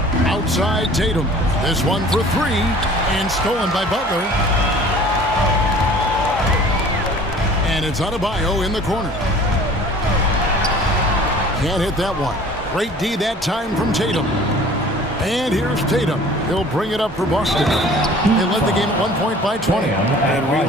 Outside Tatum. This one for 3 and stolen by Butler. And it's Adebayo in the corner. Can't hit that one. Great D that time from Tatum. And here's Tatum. He'll bring it up for Boston. They led the game at 1 point by 20. And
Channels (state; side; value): normal; both; correlation 0.47